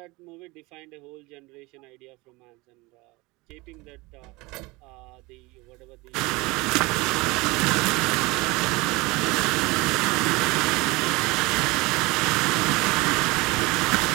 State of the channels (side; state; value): left; quieter; 23.5 dB